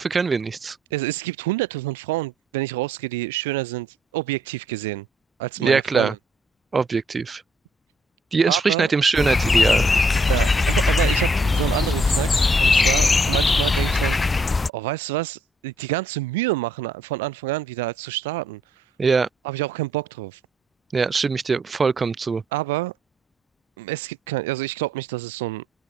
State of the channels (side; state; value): both; normal; correlation 0.68